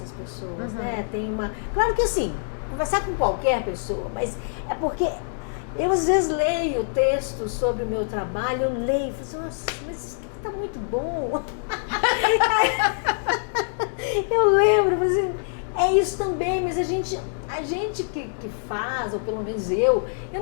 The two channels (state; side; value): silent; right; digital silence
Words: pessoas, né? Claro que assim, conversar com qualquer pessoa, mas é porque eu às vezes leio textos sobre o meu trabalho, eu leio e falo assim, nossa, mas isso aqui tá muito bom. Eu lembro, assim, é isso também, mas a gente que faz, ou pelo menos eu